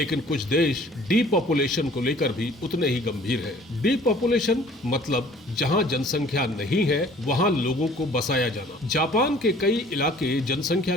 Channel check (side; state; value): both; normal; correlation 0.52